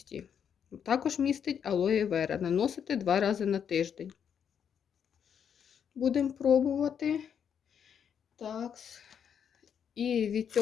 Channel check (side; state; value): right; quieter; 7.9 dB